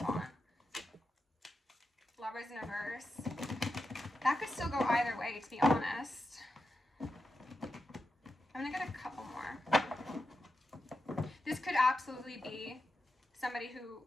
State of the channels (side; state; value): both; normal; correlation 0.89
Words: Lovers in reverse. That could still go either way, to be honest. I'm going to get a couple more. This could absolutely be somebody who